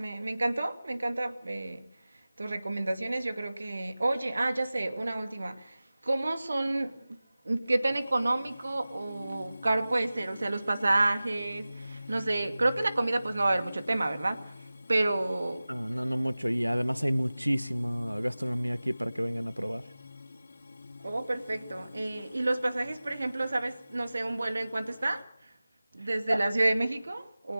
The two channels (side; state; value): both; inverted; correlation -0.97